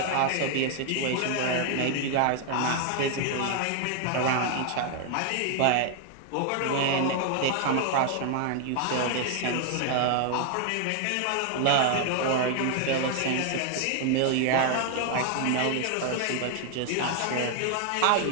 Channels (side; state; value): both; different; correlation 0.00